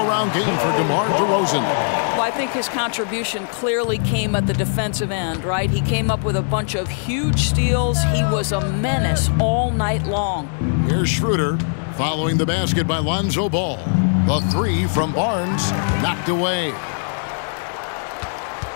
game for DeMar DeRozan. Well, I think his contribution clearly came at the defensive end, right? He came up with a bunch of huge steals. He was a menace all night long. Here's Schroeder following the basket by Lonzo Ball. The three from Barnes knocked away.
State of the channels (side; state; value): right; silent; 65 dB below the other